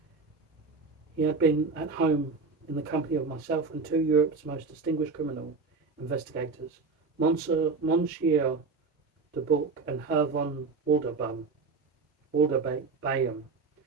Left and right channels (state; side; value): quieter; left; 4.4 dB